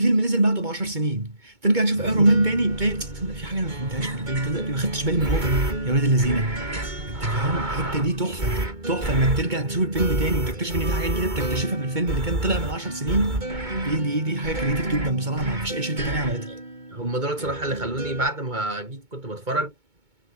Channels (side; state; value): left; late; 2.2 ms